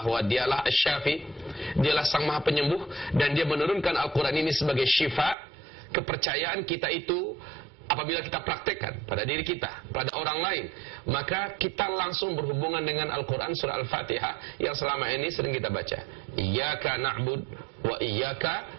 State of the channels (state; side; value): drops out; left; at 5.4 s